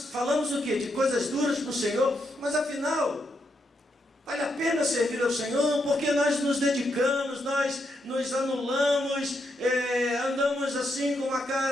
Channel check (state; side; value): normal; both; correlation 0.80